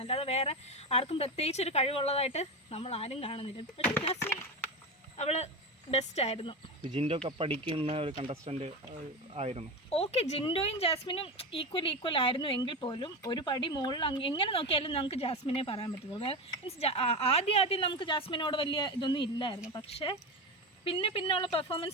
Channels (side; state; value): both; normal; correlation 0.20